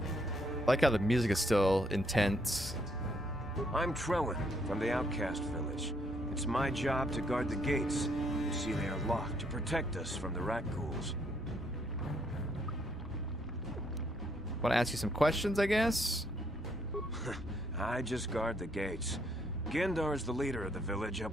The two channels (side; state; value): both; normal; correlation 0.71